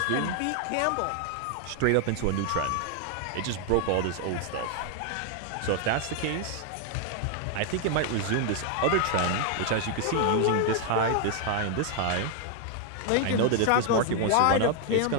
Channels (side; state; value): both; different; correlation 0.00